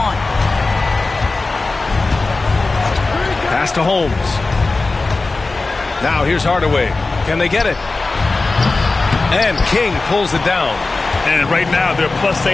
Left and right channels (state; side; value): quieter; right; 3.5 dB